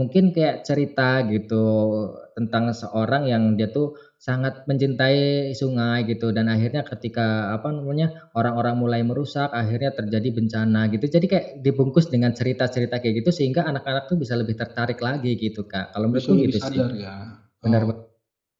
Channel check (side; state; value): both; identical; correlation 1.00